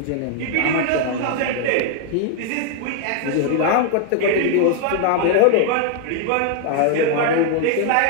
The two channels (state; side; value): different; both; correlation 0.00